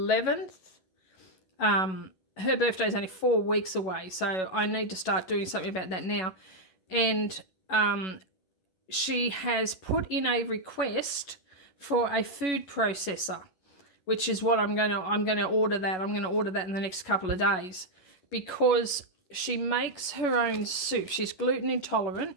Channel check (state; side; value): late; right; 11 ms